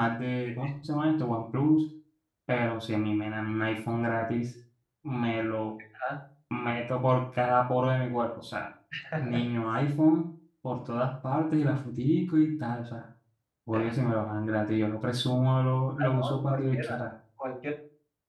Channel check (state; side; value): identical; both; correlation 1.00